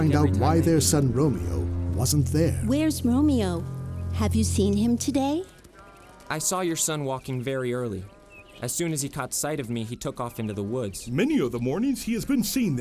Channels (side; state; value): both; identical; correlation 1.00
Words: out why their son Romeo wasn't there. Where's Romeo? Have you seen him today? I saw your son walking very early. As soon as he caught sight of me, he took off into the woods. Many of the mornings he has been seen